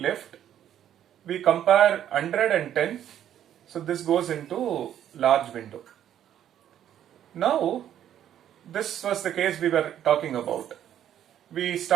We compare 100 and 10. So this goes into large window. Now this was the case we were talking about. We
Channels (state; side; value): quieter; left; 10.6 dB